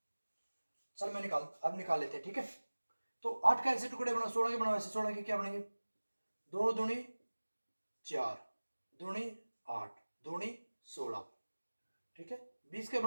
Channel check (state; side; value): inverted; both; correlation -1.00